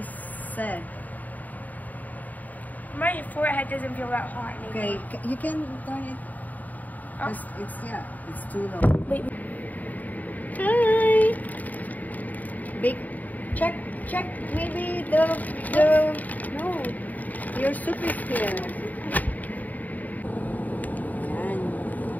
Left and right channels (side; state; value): right; late; 0.079 ms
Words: said? My forehead doesn't feel that hot anymore. Okay, you can turn it. Oh. It's too low. Wait. Hi. Big check. Maybe the no. Your soup is here. Yan.